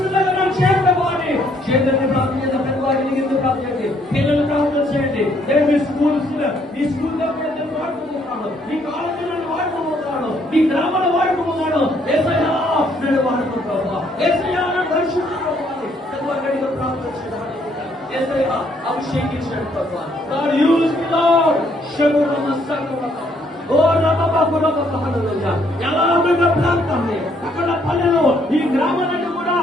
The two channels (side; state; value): both; normal; correlation 0.68